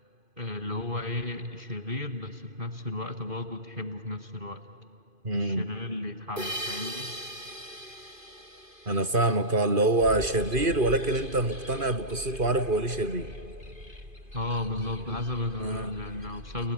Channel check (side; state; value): left; late; 2.5 ms